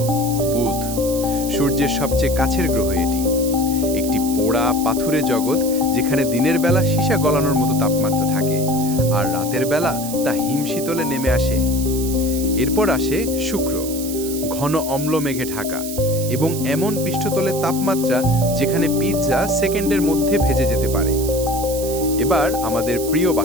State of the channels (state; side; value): noise; right; hiss, 9 dB below the sound